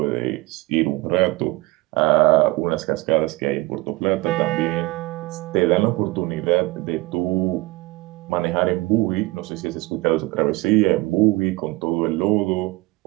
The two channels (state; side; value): quieter; left; 21.5 dB